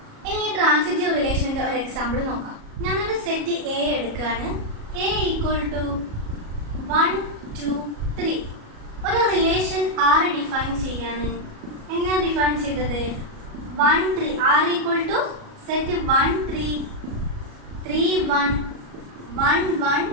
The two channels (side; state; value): left; late; 37 ms